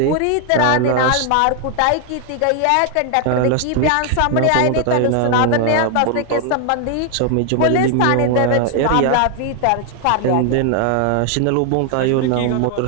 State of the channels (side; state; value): both; different; correlation 0.00